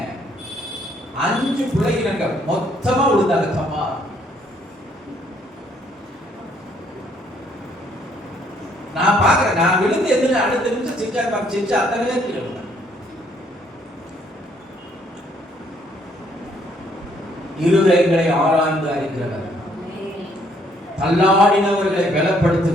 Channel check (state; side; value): normal; both; correlation 0.67